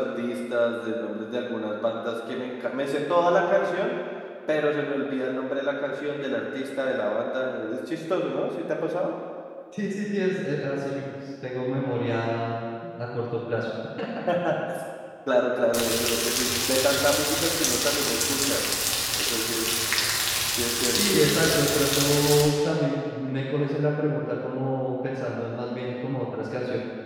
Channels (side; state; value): both; identical; correlation 1.00